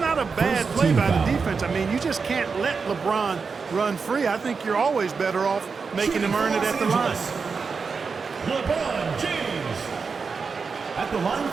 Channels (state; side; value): quieter; left; 5.1 dB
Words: a bad play by the defense. I mean, you just can't let LeBron run free. I think you're always better off making him earn it at the line. LeBron James at the line